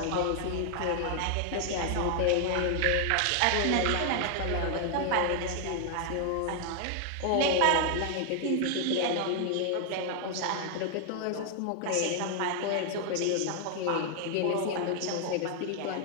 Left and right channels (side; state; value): both; different; correlation 0.00